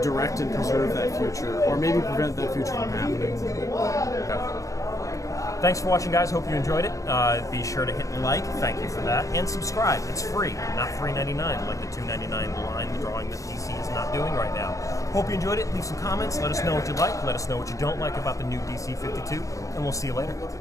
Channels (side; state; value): right; late; 0.16 ms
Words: direct and preserve that future, or maybe prevent that future from happening. Thanks for watching, guys. Hope you enjoyed it. Be sure to hit like, thank you for that, and subscribe. It's free, not $3.99 like the $2.99 line drawing that DC is not doing right now. Hope you enjoyed it. Leave some comments. Let us know what you like. Let us know what you don't like about the new DC 52, and we'll see you later.